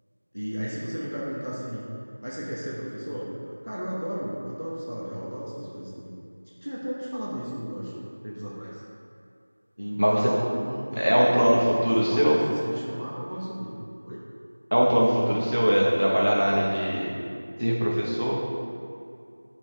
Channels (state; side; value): inverted; both; correlation -1.00